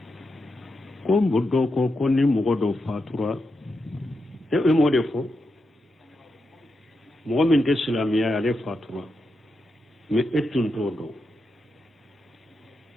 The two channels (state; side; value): normal; both; correlation 0.86